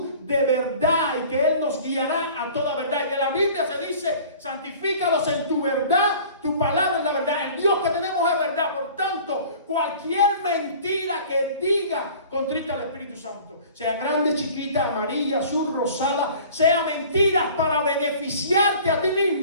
de verdad y que Él nos guiará a toda verdad. Y de la Biblia se dice, santifícalos en tu verdad, tu palabra es la verdad. El Dios que tenemos es verdad. Por tanto, cualquier mentira que diga contrita al Espíritu Santo, sea grande, chiquita, amarilla, azul, rosada, sea mentiras para beneficiarte a ti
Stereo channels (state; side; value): inverted; both; correlation -0.46